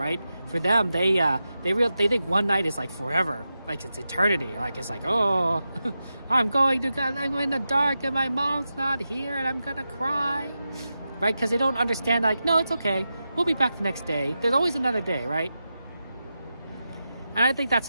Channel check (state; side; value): inverted; both; correlation -0.90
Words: For them, they think one night is like forever, like it's eternity. Like it's like, oh, I'm in the dark and my mom's not here and I'm gonna cry, right? Because they don't understand. Like, no, it's okay. We'll be back the next day. There's always another day, right? And I think that's